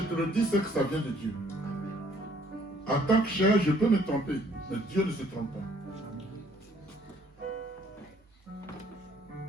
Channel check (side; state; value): both; normal; correlation 0.62